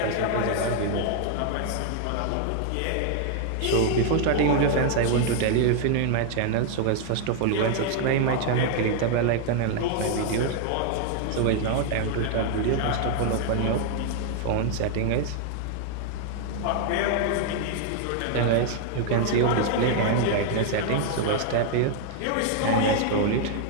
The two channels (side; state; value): both; different; correlation 0.00